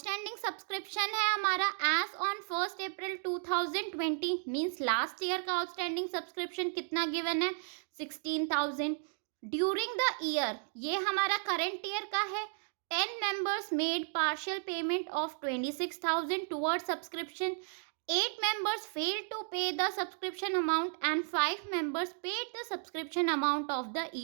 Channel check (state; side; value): silent; left; 55 dB below the other